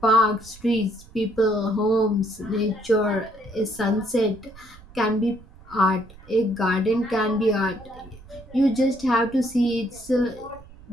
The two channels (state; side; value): noise; right; rumble, 21 dB below the sound